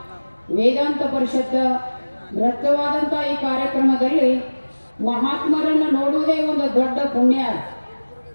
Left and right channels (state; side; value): inverted; both; correlation -1.00